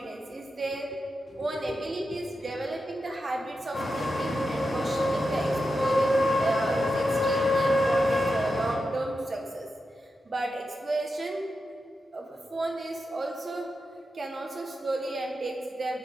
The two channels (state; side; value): normal; both; correlation 0.89